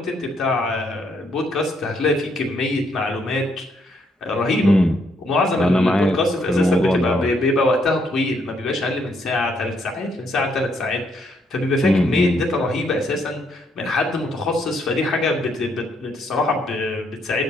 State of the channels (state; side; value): normal; both; correlation 0.73